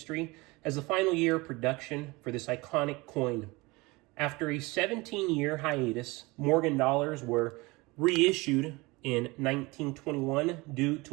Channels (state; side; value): quieter; left; 23.5 dB